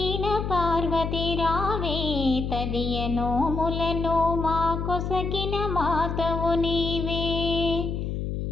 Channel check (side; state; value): left; noise; hum, 3 dB below the sound